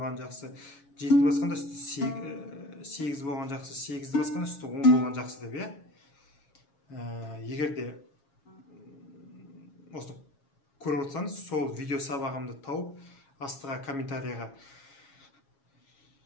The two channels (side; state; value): right; late; 7.3 ms